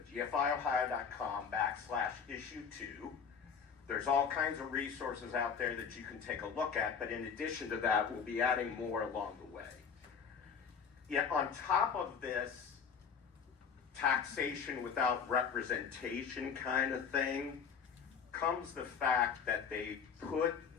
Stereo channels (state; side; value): quieter; right; 6.6 dB